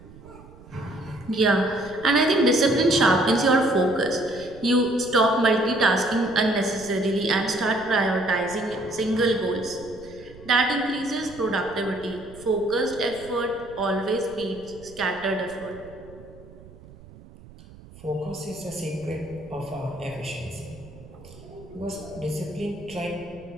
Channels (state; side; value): noise; right; rumble, 20 dB below the sound